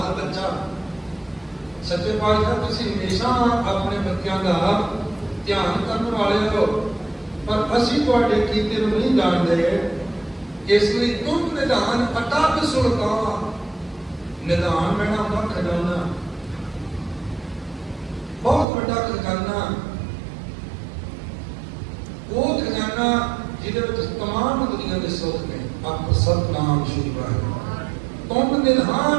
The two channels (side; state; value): left; drops out; at 18.7 s